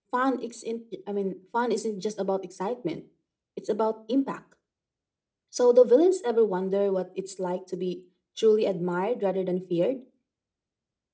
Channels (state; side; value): identical; both; correlation 1.00